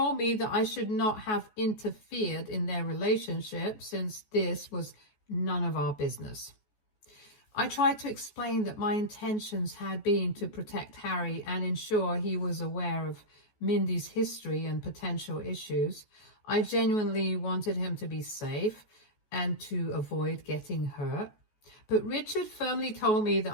me that I should not have interfered in their relationship since this was none of our business. I tried to explain that my intentions had been to protect Harry and ensure he was aware of Mindy's history and potential issues. I genuinely wanted him to be safe and to avoid getting hurt. But Richard firmly told me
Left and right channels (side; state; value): right; late; 14 ms